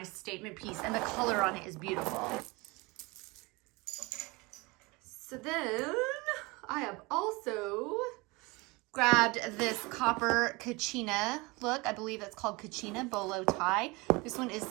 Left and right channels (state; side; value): quieter; left; 25.1 dB